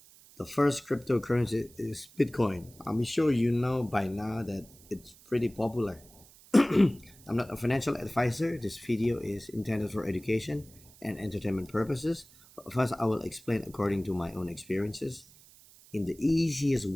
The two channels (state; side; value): noise; right; hiss, 24 dB below the sound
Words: the first cryptocurrency is Bitcoin. I'm sure you know by now that it's pretty popular. I'm not a financial advisor. This video is intended for education and entertainment purposes. But first, I will explain according to my own experiences in the easiest